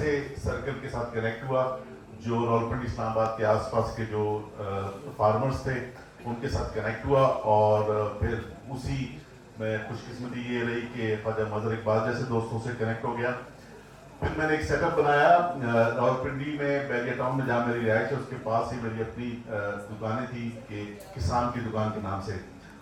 सर्कल के साथ कनेक्ट हुआ जो रावलपिंडी इस्लामाबाद के आसपास के जो फार्मर्स थे उनके साथ कनेक्ट हुआ, और फिर उसी में खुशकिस्मती ये रही कि ख्वाजा मजहर इकबाल जैसे दोस्तों से कनेक्ट हो गया। फिर मैंने एक सेटअप बनाया रावलपिंडी में, बैरिया टाउन में जहाँ मेरी रिहाइश है उसके पास ही मेरी अपनी दुकानें थी कि किसान की दुकान के नाम से।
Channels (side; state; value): both; identical; correlation 1.00